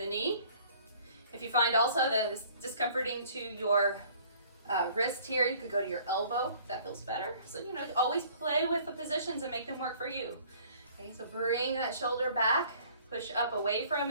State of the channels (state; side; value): inverted; both; correlation -0.54